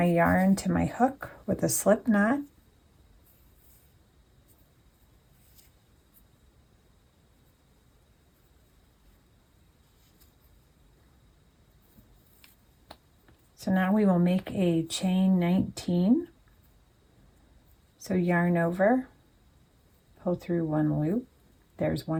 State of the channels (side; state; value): both; identical; correlation 1.00